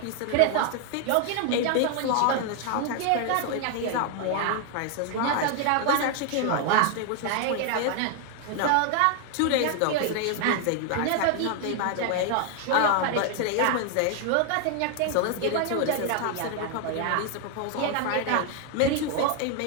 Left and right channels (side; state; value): both; different; correlation 0.00